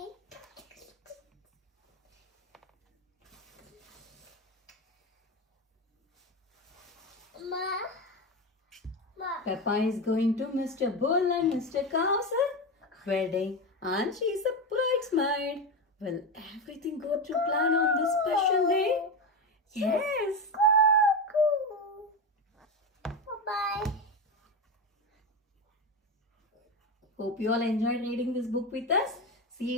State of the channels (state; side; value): normal; both; correlation 0.17